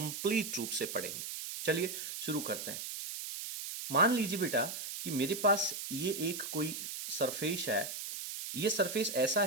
रूप से पढ़ेंगे। चलिए शुरू करते हैं। मान लीजिए बेटा कि मेरे पास ये एक कोई सरफेस है। ये सरफेस ऐसा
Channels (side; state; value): right; noise; hiss, 6 dB below the sound